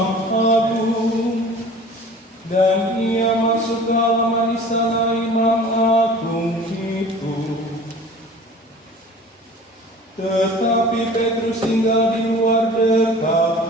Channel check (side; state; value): both; normal; correlation 0.44